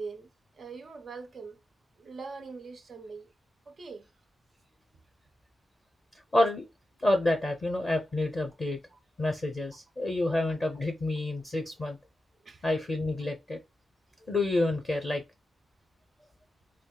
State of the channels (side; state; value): both; normal; correlation 0.91